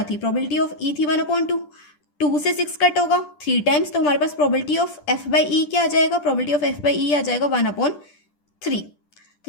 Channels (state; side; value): late; right; 10 ms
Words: थी, प्रोबेबिलिटी ऑफ ई थी 1/2, 2 से 6 कट होगा 3 टाइम्स, तो हमारे पास probability of F by E क्या आ जाएगा, प्रोबेबिलिटी ऑफ एफ बाई ई आ जाएगा 1/3। तो